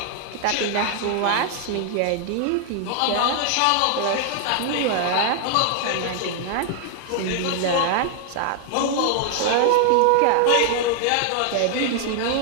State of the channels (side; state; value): both; different; correlation 0.00